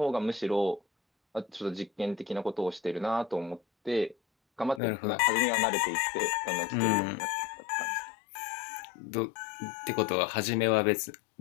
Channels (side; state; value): right; drops out; at 4.8 s